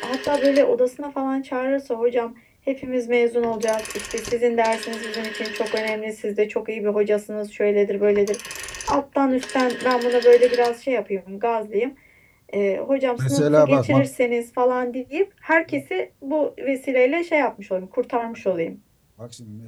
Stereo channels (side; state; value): both; identical; correlation 1.00